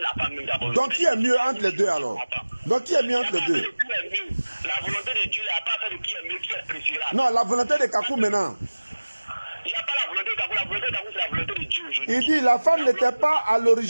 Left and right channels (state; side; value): inverted; both; correlation -1.00